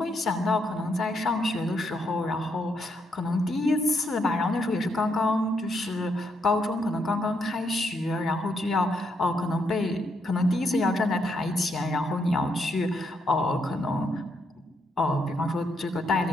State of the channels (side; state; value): both; normal; correlation 0.77